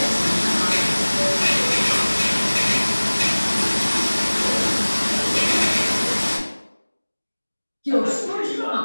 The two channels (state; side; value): inverted; both; correlation -1.00